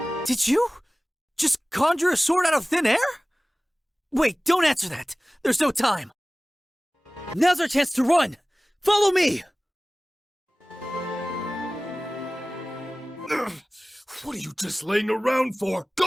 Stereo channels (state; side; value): normal; both; correlation 0.98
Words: Did you just conjure a sword out of thin air? Wait, don't answer that. There's no time. Now's our chance to run. Follow me. Ugh, what are you just laying around for?